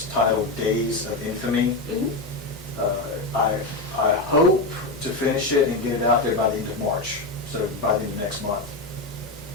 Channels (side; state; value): right; quieter; 3.1 dB